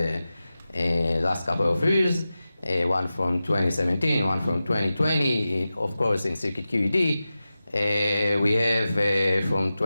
last couple of years, one from 2017, one from 2020, of course in circuit QED. We have from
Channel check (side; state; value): both; inverted; correlation -0.94